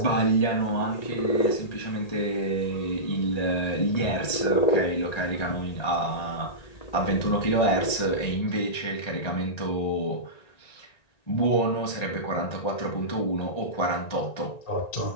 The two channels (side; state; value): right; late; 1.9 ms